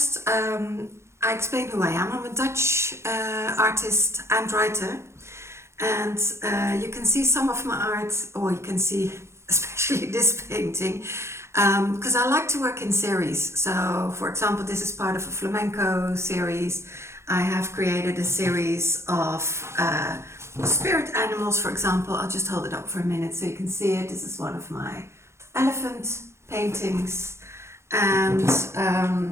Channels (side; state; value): left; late; 0.13 ms